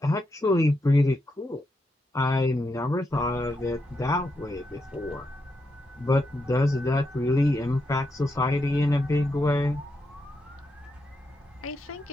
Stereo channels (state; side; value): normal; both; correlation 0.83